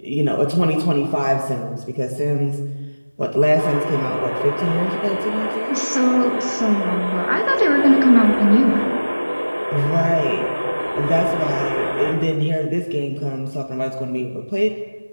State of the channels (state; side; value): inverted; both; correlation -1.00